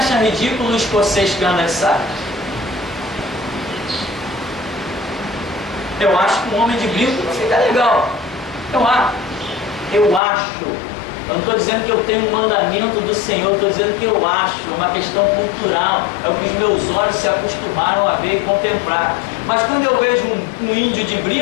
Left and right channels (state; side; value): drops out; right; at 10.2 s